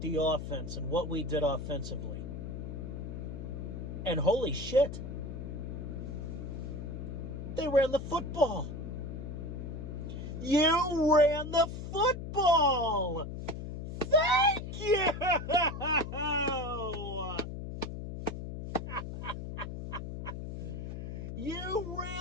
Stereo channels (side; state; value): left; noise; hum, 7 dB below the sound